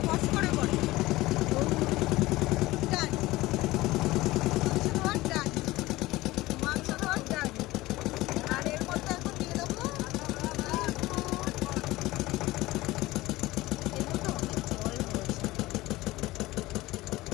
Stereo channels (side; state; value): right; quieter; 18.7 dB